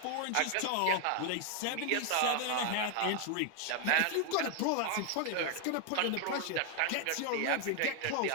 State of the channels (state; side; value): different; both; correlation 0.00